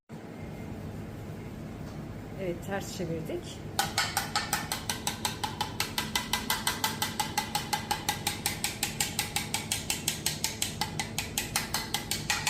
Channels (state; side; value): identical; both; correlation 1.00